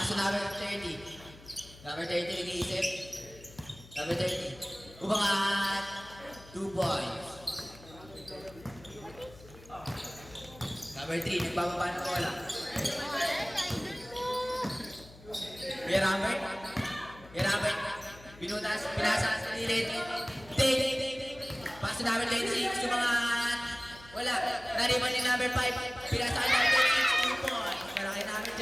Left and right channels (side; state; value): left; noise; hum, 20 dB below the sound